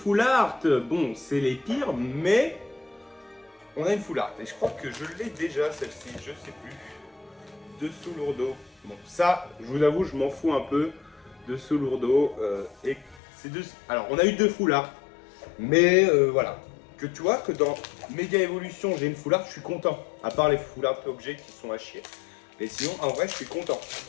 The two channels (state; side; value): drops out; right; at 13.2 s